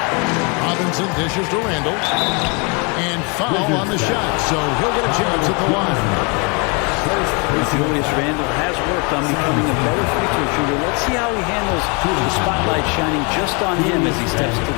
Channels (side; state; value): right; quieter; 32.3 dB